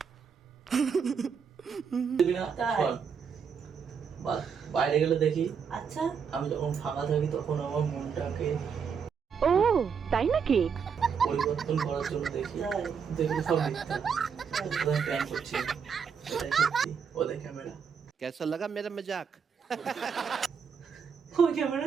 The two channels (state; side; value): quieter; left; 6.5 dB